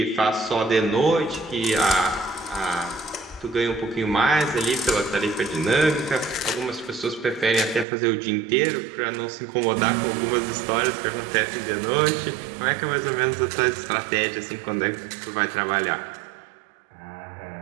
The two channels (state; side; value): drops out; left; at 7.9 s